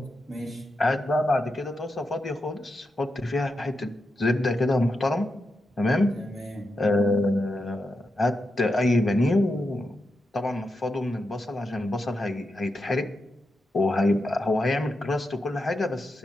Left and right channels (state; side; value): normal; both; correlation 0.87